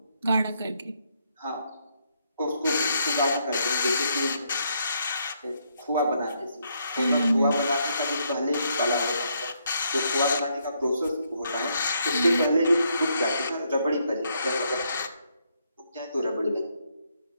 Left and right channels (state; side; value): inverted; both; correlation -0.75